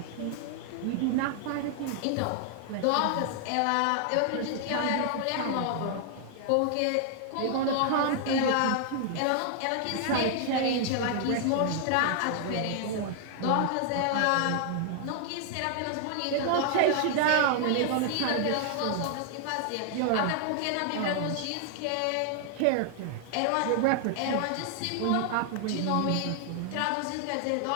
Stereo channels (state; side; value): different; both; correlation 0.00